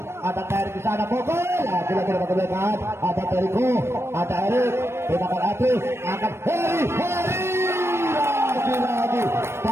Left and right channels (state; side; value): late; left; 0.12 ms